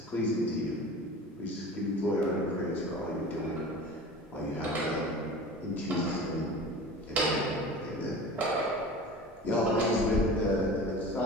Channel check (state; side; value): normal; both; correlation 0.37